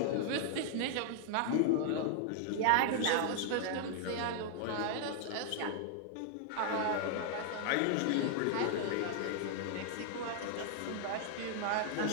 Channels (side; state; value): both; different; correlation 0.00